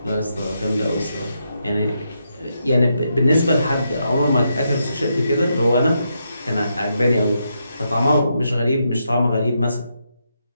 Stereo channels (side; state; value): both; inverted; correlation -0.81